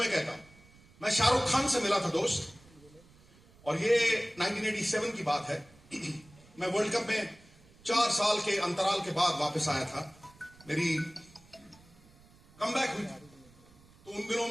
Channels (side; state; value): right; noise; rumble, 26 dB below the sound